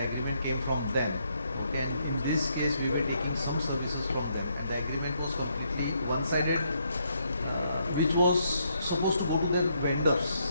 agreement came from them, and in this case, we were taking some services from them, and the agreement was completely one-sided, which was supposed to go to the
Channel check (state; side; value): inverted; both; correlation -0.75